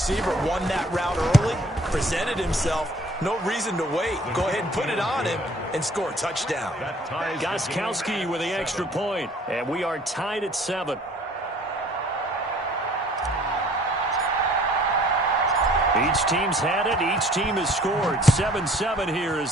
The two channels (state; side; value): normal; both; correlation 0.55